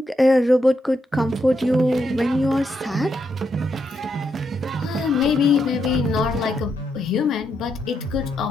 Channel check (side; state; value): both; normal; correlation 0.81